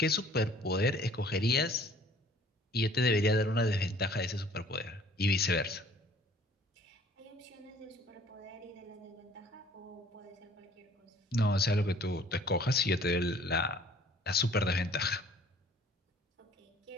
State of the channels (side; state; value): both; normal; correlation 0.54